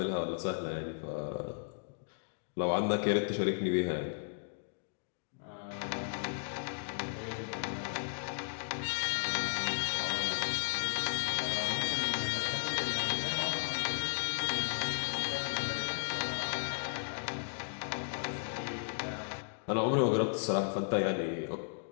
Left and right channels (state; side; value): silent; right; digital silence